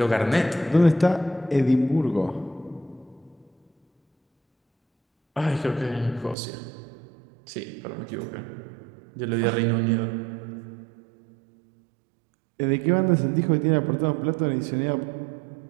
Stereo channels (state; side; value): drops out; left; at 6.4 s